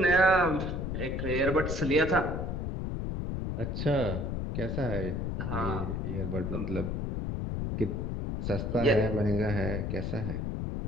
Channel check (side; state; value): left; noise; rumble, 2 dB below the sound